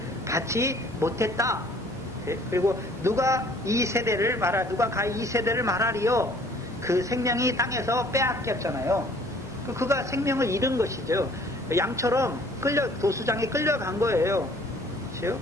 받지 못했다. 그리고 누가 이 세대를 말하리요? 그 생명이 땅에서 빼앗겼잖아요. 그가 생명을 잃은 것이죠. 양처럼 도수장에 끌려간 거예요. 그렇죠?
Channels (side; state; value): both; normal; correlation 0.55